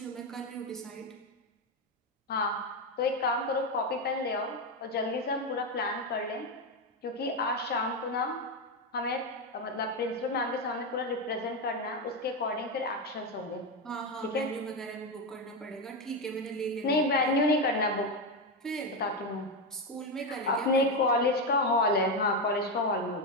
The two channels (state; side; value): normal; both; correlation 0.10